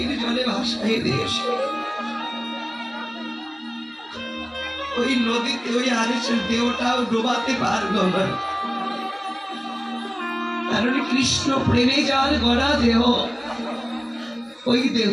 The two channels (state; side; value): identical; both; correlation 1.00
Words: জলে ভাসাই দিয়েছে। ওই নদীতে ওই হারেসের দেহটাও ডোবাতে পারলো না, কারণ কৃষ্ণ প্রেমে যার গড়া দেহ, ওই